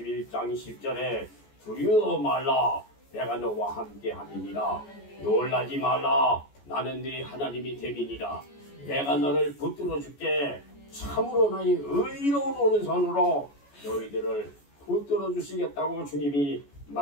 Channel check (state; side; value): late; right; 14 ms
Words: 10절에 두려워 말라 내가 너와 함께 함이니라. 놀라지 말라 나는 네 하나님이 됨이니라. 내가 너를 붙들어 줄게. 참으로 나의 의로운 오른손으로 너희들을 붙들어 주시겠다고 주님이